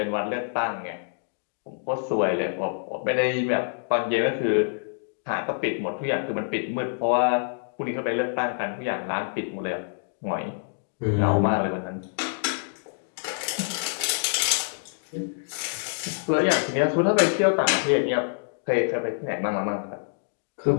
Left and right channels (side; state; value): right; silent; digital silence